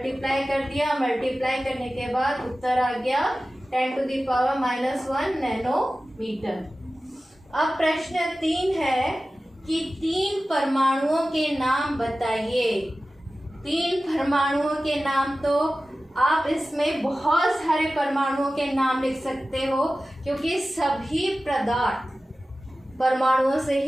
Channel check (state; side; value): normal; both; correlation 0.95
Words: कर दिया। मल्टीप्लाई करने के बाद उत्तर आ गया 10⁻⁻1 नैनोमीटर। अब प्रश्न 3 है कि 3 परमाणुओं के नाम बताइए। 3 परमाणुओं के नाम, तो आप इसमें बहुत सारे परमाणुओं के नाम लिख सकते हो, क्योंकि सभी पदार्थ परमाणुओं से